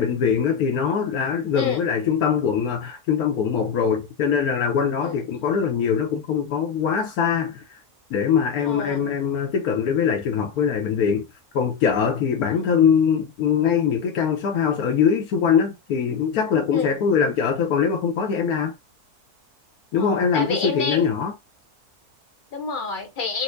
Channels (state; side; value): quieter; right; 6.6 dB